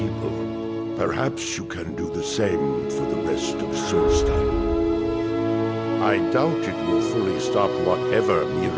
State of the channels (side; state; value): both; identical; correlation 1.00